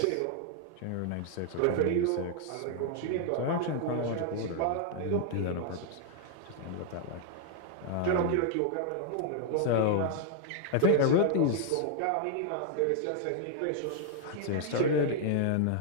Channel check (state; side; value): different; both; correlation -0.01